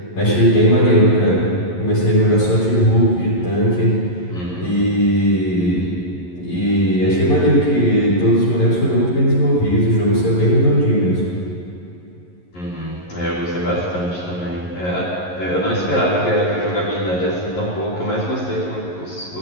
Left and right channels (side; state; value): right; late; 11 ms